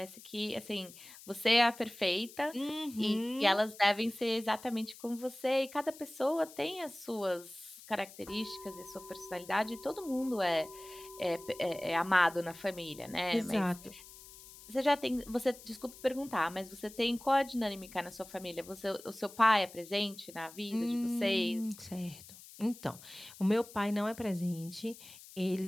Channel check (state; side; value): noise; left; hiss, 18 dB below the sound